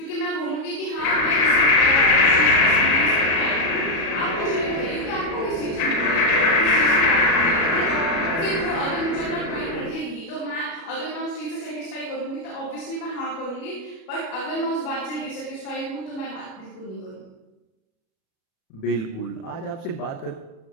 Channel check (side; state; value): right; late; 36 ms